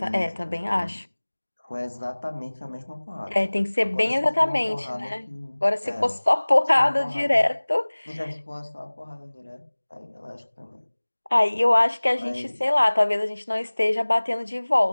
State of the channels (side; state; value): both; inverted; correlation -1.00